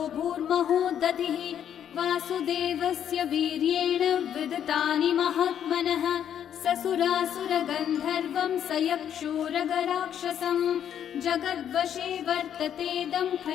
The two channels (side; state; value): right; quieter; 9.5 dB